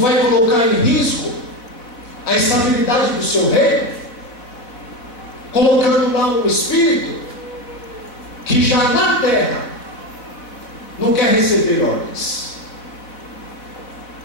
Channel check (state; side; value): late; right; 4.1 ms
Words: colocar em risco a estabilidade do seu reino, colocando lá um espírito que já na terra não quer receber ordens.